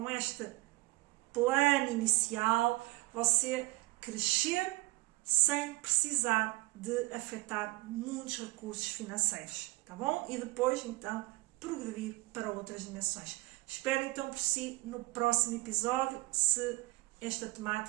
este plano inicial, você crescer sem precisar de afetar muitos recursos financeiros, tá bom? E depois então progredir para outras dimensões. Espero então por si no próximo episódio, se esta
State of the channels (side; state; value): left; quieter; 21.5 dB